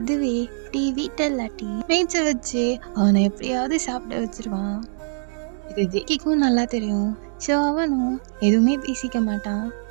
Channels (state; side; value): silent; left; digital silence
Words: டீ வீட்டில் இல்லாட்டி மேய்ச்ச வச்சு அவனை எப்படியாவது சாப்பிட வச்சிருவான். இது ஜேகேக்கும் நல்லா தெரியும். ஸோ அவனும் எதுவுமே பேசிக்க மாட்டான்.